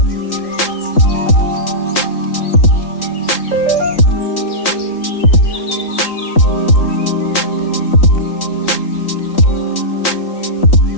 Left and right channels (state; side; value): late; right; 3.8 ms